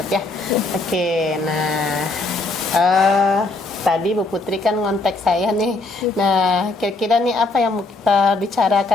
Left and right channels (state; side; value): quieter; right; 3.3 dB